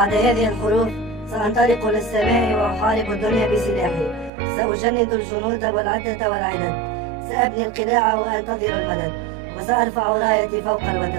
هذه الحروف سأنطلق للسماء وأحارب الدنيا بسلاحي. سأجند الجنود والعدة والعدد، سأبني القلاع وأنتظر المدد، وسأرفع رايتي فوق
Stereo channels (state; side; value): drops out; left; at 4.3 s